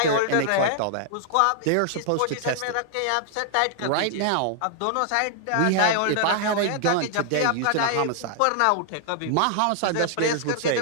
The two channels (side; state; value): both; different; correlation -0.01